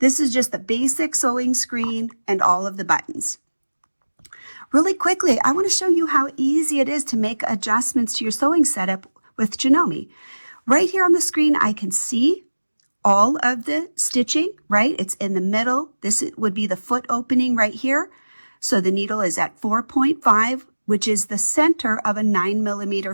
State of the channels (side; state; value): both; inverted; correlation -1.00